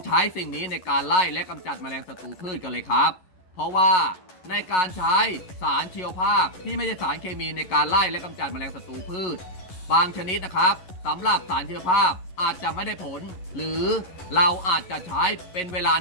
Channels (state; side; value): late; right; 11 ms